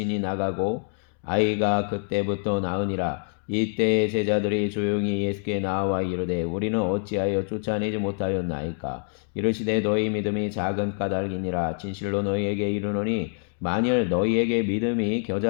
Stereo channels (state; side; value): silent; right; 61 dB below the other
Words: 나가고 아이가 그때부터 나으니라. 이때에 제자들이 조용히 예수께 나와 이르되 우리는 어찌하여 쫓아내지 못하였나이까. 이르시되 너희 믿음이 작은 까닭이니라. 진실로 너희에게 이르노니 만일 너희에게 믿음이